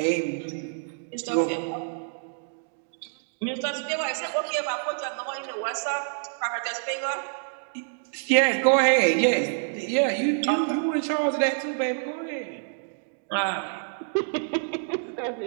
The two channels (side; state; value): left; silent; digital silence